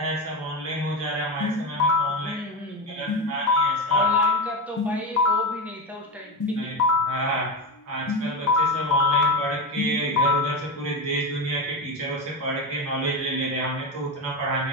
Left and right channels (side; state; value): both; normal; correlation 0.16